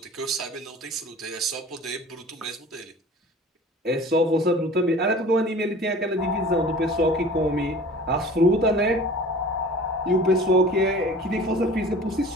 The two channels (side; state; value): both; normal; correlation 0.43